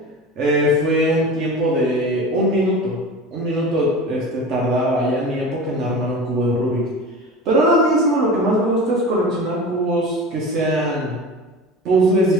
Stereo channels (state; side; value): normal; both; correlation 0.33